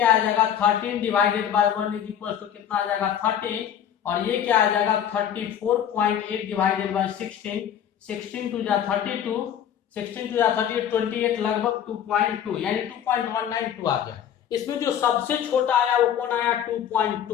आ जाएगा 13 divided by 1 is equal to कितना आ जाएगा 13, और ये क्या आ जाएगा 34.8 डिवाइडेड बाय 16, 16 टू जा 32, 16 टू जा 38, 28 लगभग 2.2 यानी 2.192 आ गया। इसमें जो सबसे छोटा आया वो कौन आया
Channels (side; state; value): right; quieter; 9.5 dB